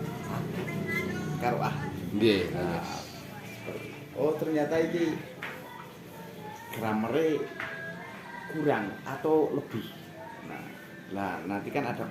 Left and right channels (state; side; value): identical; both; correlation 1.00